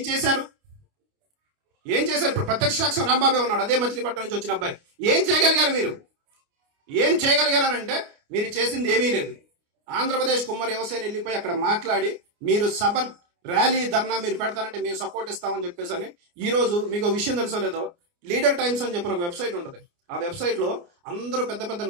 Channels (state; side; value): late; left; 29 ms